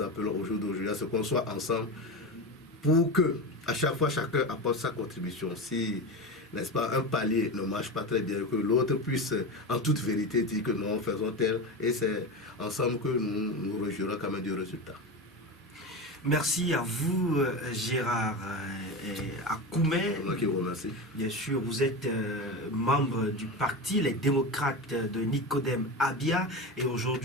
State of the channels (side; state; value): both; normal; correlation 0.22